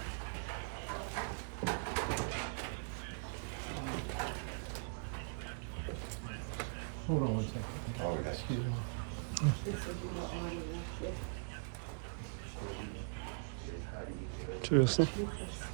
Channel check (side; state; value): left; silent; digital silence